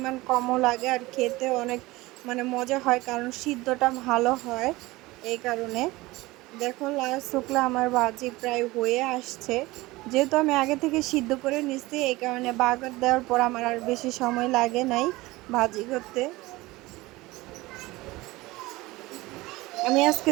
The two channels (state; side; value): quieter; left; 20.2 dB